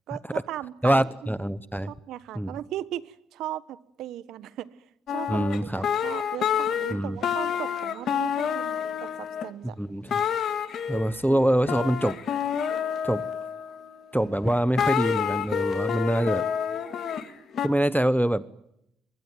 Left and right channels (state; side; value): normal; both; correlation 0.83